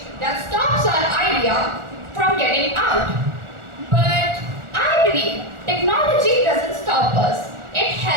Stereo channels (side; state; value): left; late; 1.4 ms